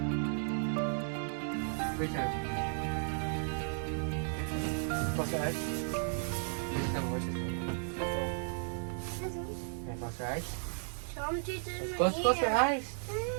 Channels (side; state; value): left; silent; 55 dB below the other